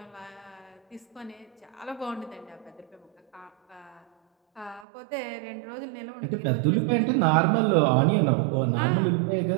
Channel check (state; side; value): drops out; left; at 4.9 s